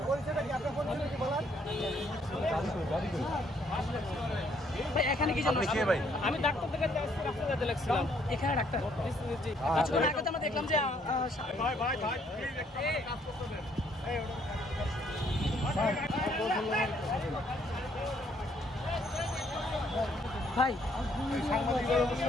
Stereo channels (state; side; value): normal; both; correlation 0.67